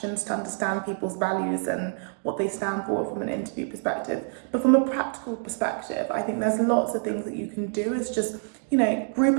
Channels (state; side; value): silent; left; 60 dB below the other